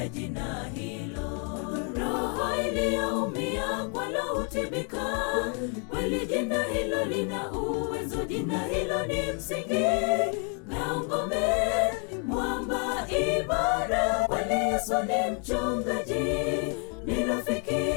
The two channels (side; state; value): right; quieter; 39.7 dB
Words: jina hilo. Roho iliyoumia kwalo hutibika, kweli jina hilo lina uwezo. Jina hilo ni msingi na ngome, mwamba imara. Kweli Yesu ni mchungaji, ni